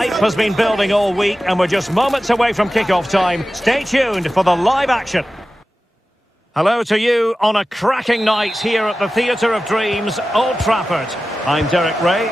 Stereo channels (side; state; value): both; normal; correlation 0.95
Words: has been building all week and we're just moments away from kick-off time. Stay tuned for the live action. Hello to you on a cracking night here at the Theatre of Dreams, Old Trafford. I'm Derek Ray